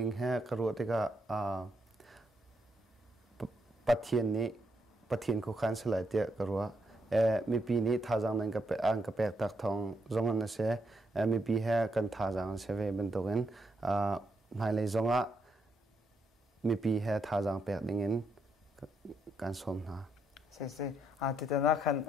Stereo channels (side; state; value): both; normal; correlation 0.78